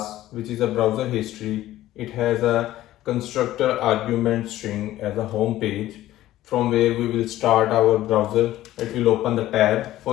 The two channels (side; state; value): right; quieter; 14.6 dB